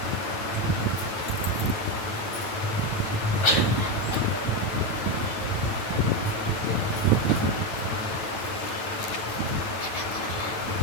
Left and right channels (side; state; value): right; late; 9.3 ms